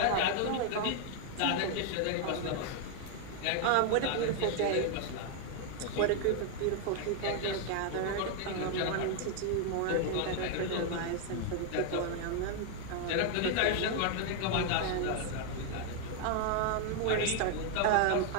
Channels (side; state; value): both; different; correlation 0.00